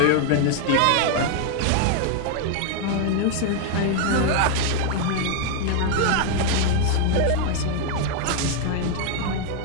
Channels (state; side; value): different; both; correlation 0.00